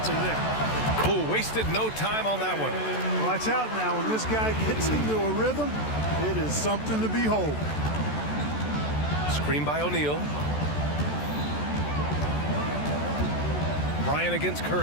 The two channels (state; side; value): late; right; 14 ms